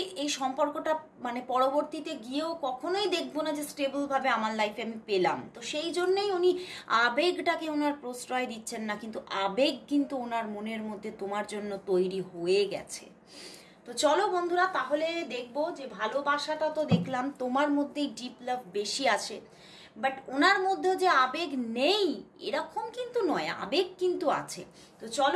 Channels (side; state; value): both; identical; correlation 1.00